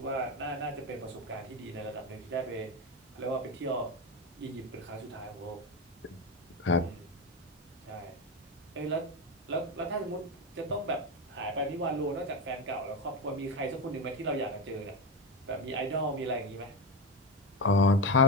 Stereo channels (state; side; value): normal; both; correlation 0.15